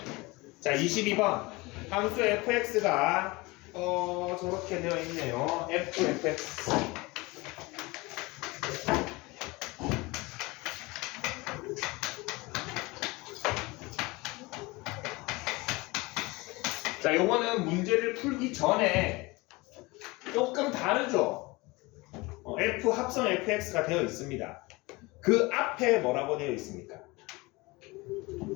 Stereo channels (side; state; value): right; quieter; 23.5 dB